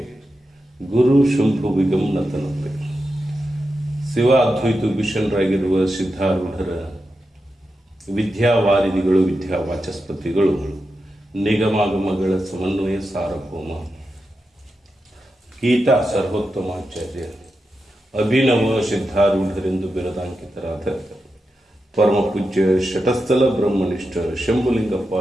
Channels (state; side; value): normal; both; correlation 0.89